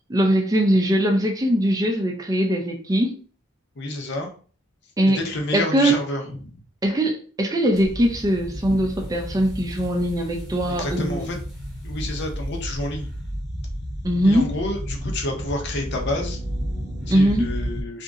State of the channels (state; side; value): normal; both; correlation 0.75